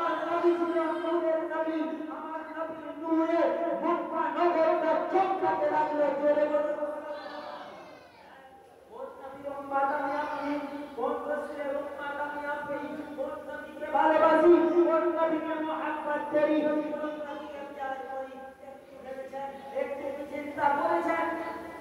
নবী ছিলেন নূরের নবী, আমার নবীর নূরে মক্কা নগরটা চমকাতে লাগলো। জোরে বলুন। কোন নবীর উম্মত আমি আপনি? কোন রাসূলের উম্মত আমি আপনি? কোন নবীকে ভালোবাসি? কোন নবীকে মুহাব্বত করি? কোন নবীকে প্যার করি? একটু চিন্তা করেছেন?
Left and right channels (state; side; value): identical; both; correlation 1.00